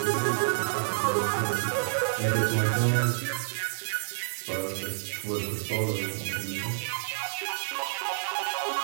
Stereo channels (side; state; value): left; silent; digital silence